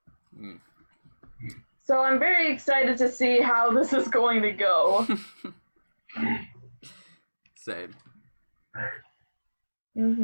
So I'm very excited to see how this is going to go. Same.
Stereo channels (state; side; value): inverted; both; correlation -1.00